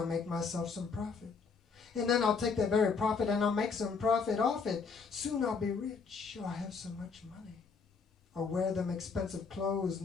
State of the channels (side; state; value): right; quieter; 5.1 dB